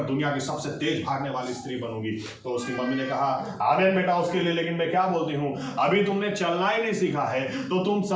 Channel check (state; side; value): identical; both; correlation 1.00